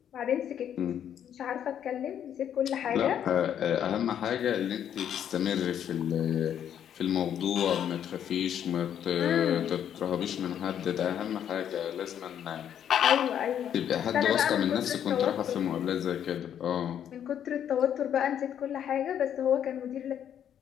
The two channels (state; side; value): quieter; right; 9.5 dB